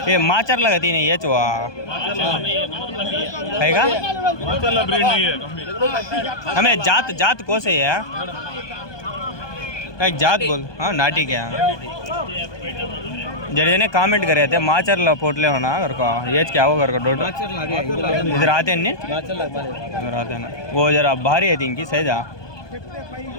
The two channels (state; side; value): late; right; 1.2 ms